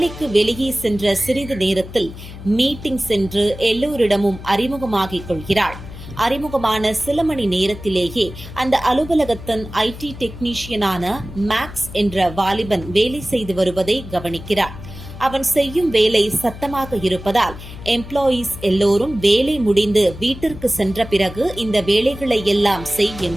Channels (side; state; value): left; noise; hum, 13 dB below the sound